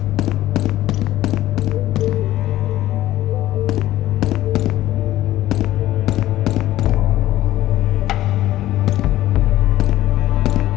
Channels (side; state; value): right; quieter; 14.7 dB